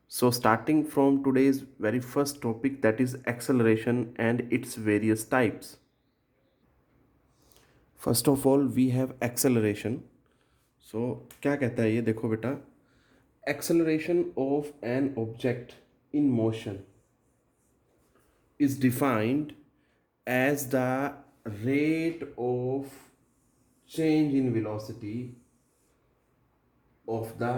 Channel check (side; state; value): both; identical; correlation 1.00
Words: So, starting from today's very first topic, that is acceleration and its various types. First of all we have acceleration. So क्या कहता है ये, देखो बेटा, acceleration of an object in motion is defined as the rate of change in velocity of